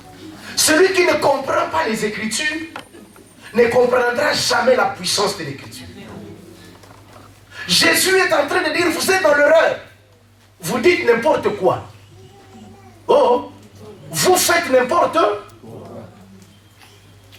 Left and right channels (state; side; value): identical; both; correlation 1.00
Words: Celui qui ne comprend pas les Écritures ne comprendra jamais la puissance de l'Écriture. Jésus est en train de dire, vous êtes dans l'erreur. Vous dites n'importe quoi. Oh, vous faites n'importe quoi.